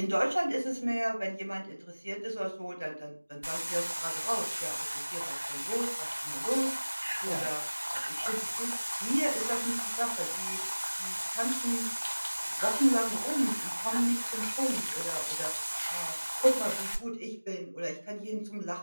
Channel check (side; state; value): both; inverted; correlation -1.00